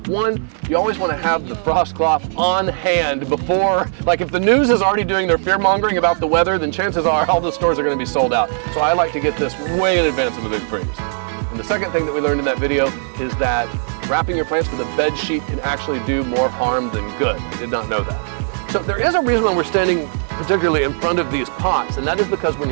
One, you always want to have the frost cloth on hand before, like if the news is already doing their fear mongering about the weather, then chances are all the stores are going to be sold out. So I like to get this way in advance of a big freeze. And the second thing that we learned in that video is that wrapping your plants with a bed sheet can actually do more harm than good. I did not know that. So there is a reason why we're standing particularly in front of these pots, and that is because when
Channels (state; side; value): silent; left; digital silence